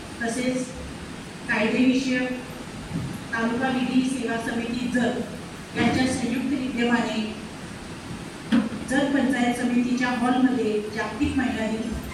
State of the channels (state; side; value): identical; both; correlation 1.00